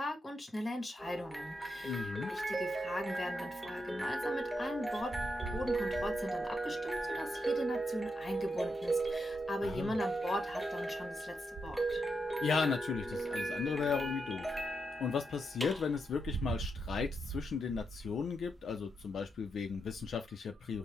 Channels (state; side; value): normal; both; correlation 0.83